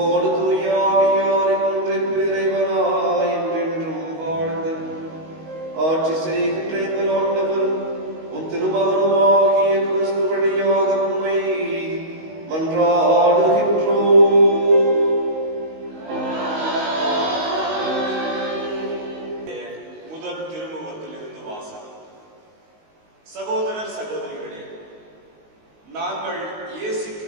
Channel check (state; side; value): late; left; 19 ms